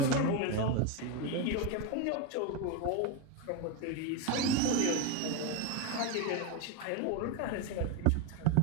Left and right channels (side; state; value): both; different; correlation 0.03